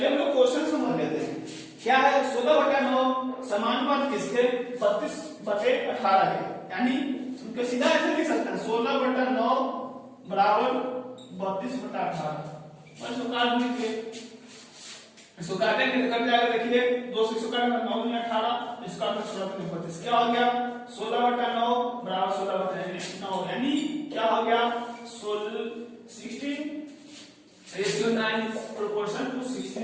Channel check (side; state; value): both; identical; correlation 1.00